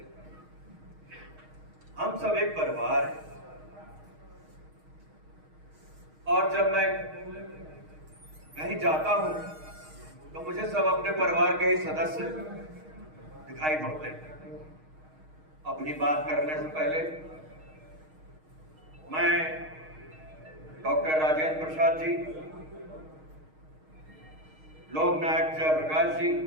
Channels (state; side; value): late; left; 6.4 ms